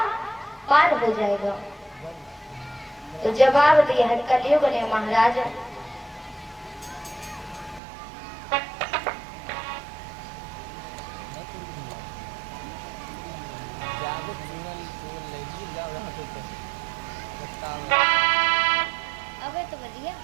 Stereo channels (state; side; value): drops out; left; at 7.8 s